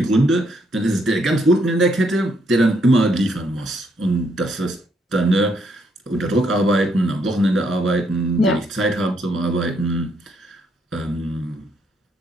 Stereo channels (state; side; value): normal; both; correlation 0.73